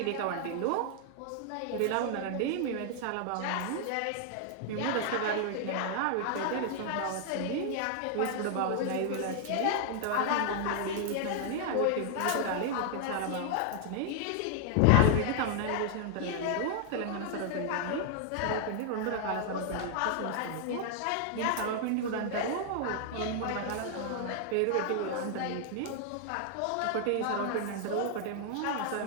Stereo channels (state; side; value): different; both; correlation 0.00